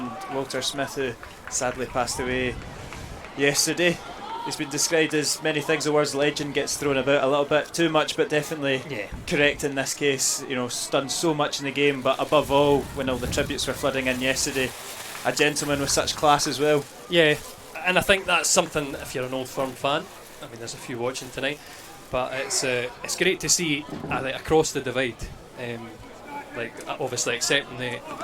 Walter Smith, who sadly passed away yesterday. He's been described as many things. The word legend gets thrown about a little bit too much, but definitely correct in this case. You know, done so much in the game, but above all, when all the tributes were flooding in yesterday, a gentleman with such class as well. yeah, and I think that's something. If you're an Old Firm fan, I mean, there's a few watching tonight, but it's great to see like across the divide. Like obviously accepting the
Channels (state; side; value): identical; both; correlation 1.00